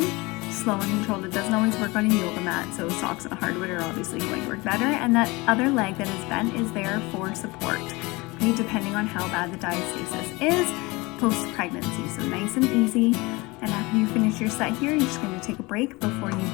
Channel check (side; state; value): right; quieter; 23.7 dB